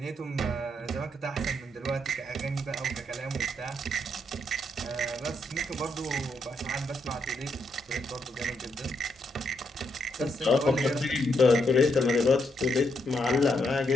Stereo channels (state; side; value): normal; both; correlation 0.78